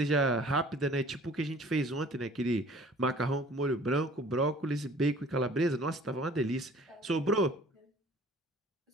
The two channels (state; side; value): normal; both; correlation 0.50